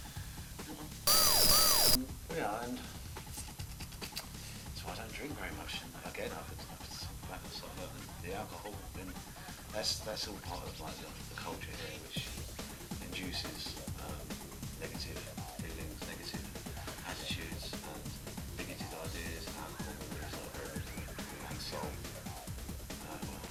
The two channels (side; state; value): both; identical; correlation 1.00